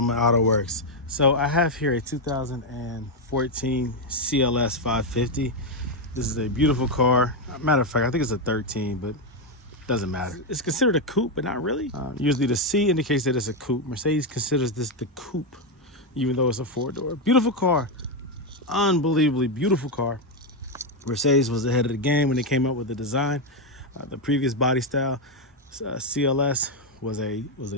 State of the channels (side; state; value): both; normal; correlation 0.05